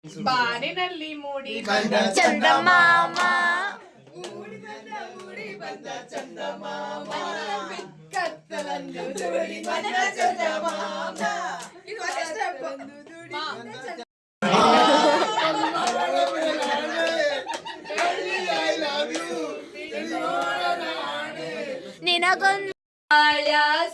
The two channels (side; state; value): both; identical; correlation 1.00